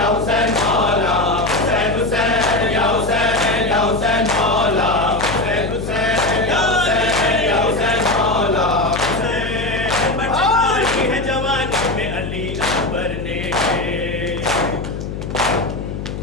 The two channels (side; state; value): left; noise; hum, 7 dB below the sound